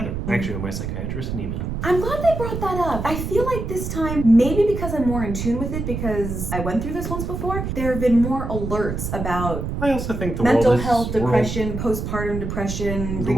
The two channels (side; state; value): right; noise; rumble, 4 dB below the sound